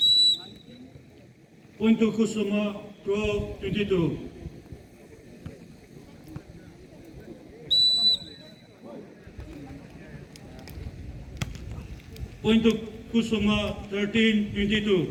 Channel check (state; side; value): identical; both; correlation 1.00